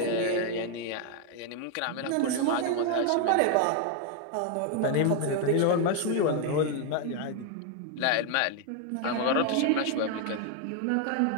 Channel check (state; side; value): different; both; correlation 0.01